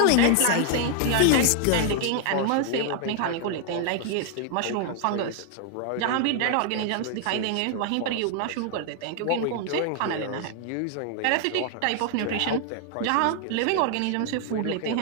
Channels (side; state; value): both; different; correlation 0.00